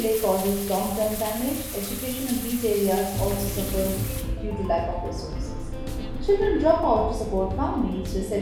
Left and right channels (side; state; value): both; identical; correlation 1.00